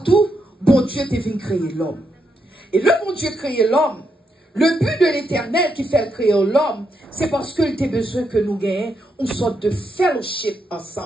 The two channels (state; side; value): normal; both; correlation 0.81